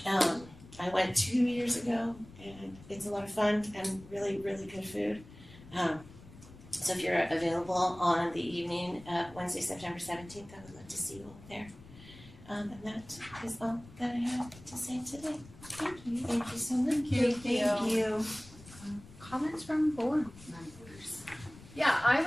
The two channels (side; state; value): left; noise; rumble, 19 dB below the sound